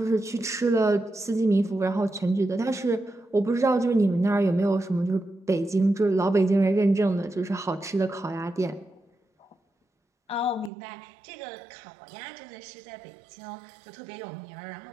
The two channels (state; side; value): drops out; left; at 10.7 s